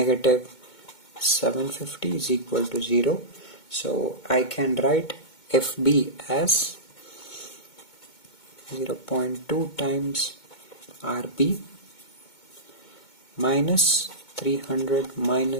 750 is equal to 0. So I can write Fb as 0.2 times Rb minus 300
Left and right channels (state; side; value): late; right; 2.2 ms